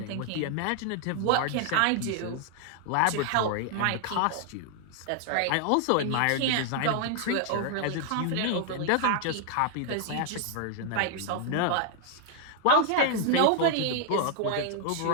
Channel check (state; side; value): different; both; correlation 0.00